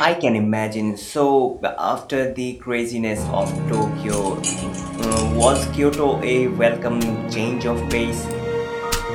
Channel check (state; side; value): identical; both; correlation 1.00